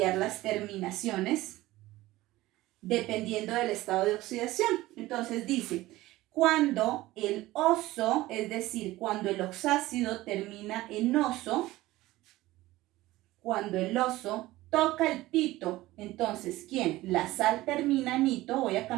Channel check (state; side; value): quieter; left; 17.6 dB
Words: las terminaciones dependiendo del estado de oxidación. Entonces dice, cuando el oso, es decir, cuando el oxácido termina en oso, cuando el oso toca el pito, entonces, ¿quién? La sal termina en ito, voy a